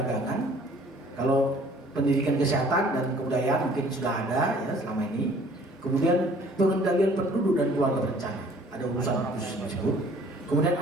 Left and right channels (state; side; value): normal; both; correlation 0.54